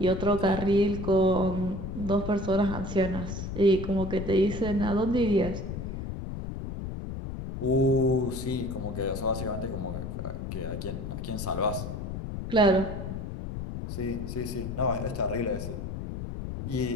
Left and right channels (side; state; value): left; noise; rumble, 6 dB below the sound